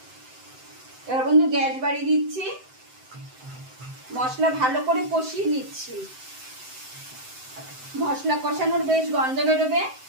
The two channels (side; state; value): left; late; 7.8 ms